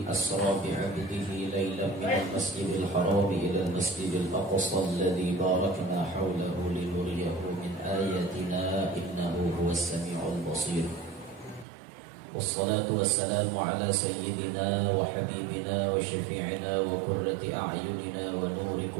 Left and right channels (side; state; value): left; drops out; at 11.7 s